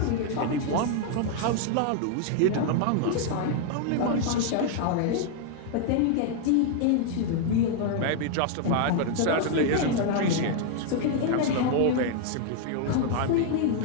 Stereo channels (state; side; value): different; both; correlation 0.00